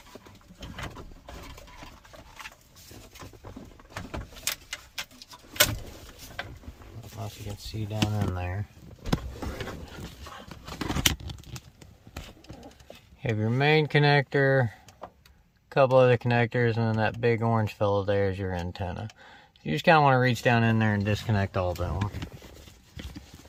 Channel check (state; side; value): identical; both; correlation 1.00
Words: I don't know if you can see down in there. You have your main connector, a couple other connectors, and then that big orange fellow there is your antenna. You just kind of want to reach down in there and disconnect all of them.